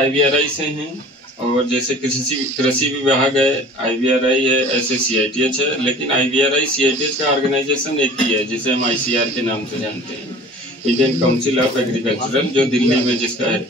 IVRI से हैं। और जैसे कृषि विभाग है, IVRI है, ऐसे CITH है। लेकिन IVRI CITH का ऑर्गेनाइजेशन एक ही है, जिसे हम ICR के नाम से जानते हैं, इंडियन काउंसिल ऑफ एग्रीकल्चरल, जो दिल्ली में जिसका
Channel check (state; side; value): normal; both; correlation 0.45